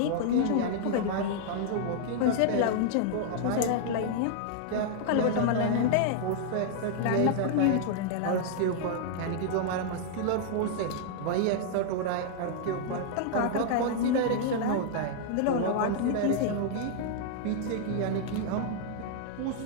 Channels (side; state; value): both; different; correlation -0.01